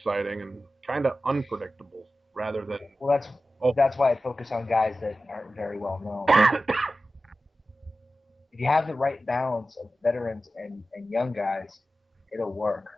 and kind of unpredictable rather than Well, oh that's why I focus on guys that aren't very well known. If you have the right balance of veterans and young guys, it'll work.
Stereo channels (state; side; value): normal; both; correlation 0.94